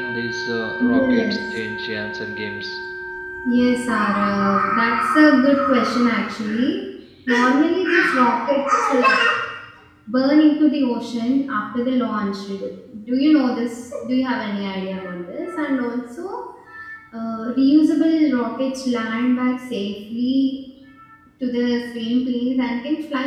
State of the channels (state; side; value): identical; both; correlation 1.00